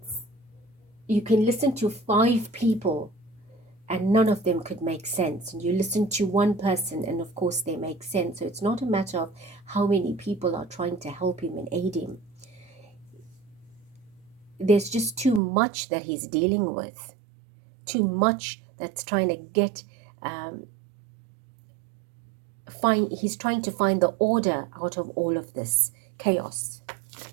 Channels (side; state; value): left; drops out; at 15.4 s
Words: you can listen to 5 people and none of them could make sense. And you listen to one person and of course they make sense. So it's not a matter of how many people are trying to help him and aid him. There's just too much that he's dealing with. Too much that's trying to get, he's trying to find the order out of all of this chaos.